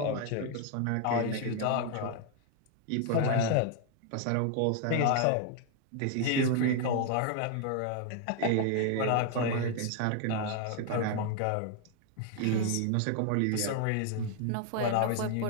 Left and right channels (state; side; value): different; both; correlation 0.00